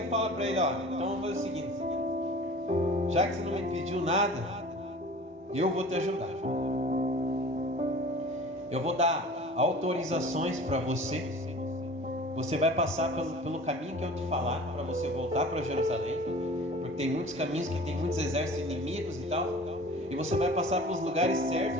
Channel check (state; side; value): normal; both; correlation 0.42